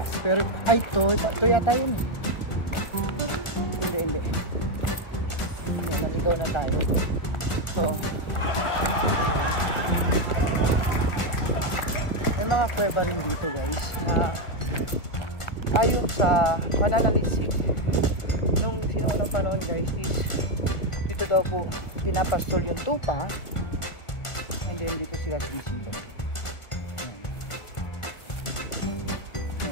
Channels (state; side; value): late; right; 1.4 ms